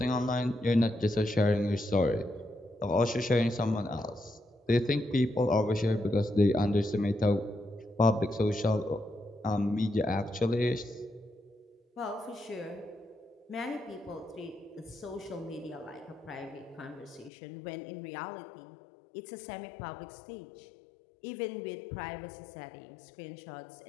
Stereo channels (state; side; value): drops out; right; at 17.3 s